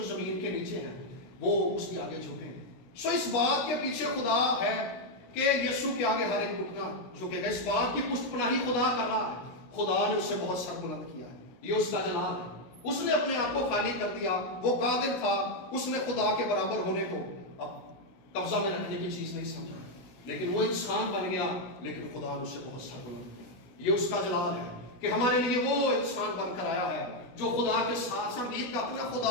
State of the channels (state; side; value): late; right; 17 ms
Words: زمین کے نیچے ہیں، وہ اس کے آگے جھکیں۔ سو اس بات کے پیچھے خدا ہے کہ یسوع کے آگے ہر ایک گھٹنا جھکے گا، اس بات کی پشت پناہی خدا کر رہا ہے۔ خدا نے اسے بہت سربلند کیا ہے، یہ اس کا جلال ہے۔ اس نے اپنے آپ کو خالی کر دیا، وہ قادر تھا، اس نے خدا کے برابر ہونے کو اب قبضہ میں رکھنے کی چیز نہیں سمجھا، لیکن وہ انسان بن گیا، لیکن خدا نے اسے بہت سربلند کیا۔ یہ اس کا جلال ہے کہ ہمارے لیے وہ انسان بن کر آیا ہے جو خدا کے ساتھ سنگیت کا اپنا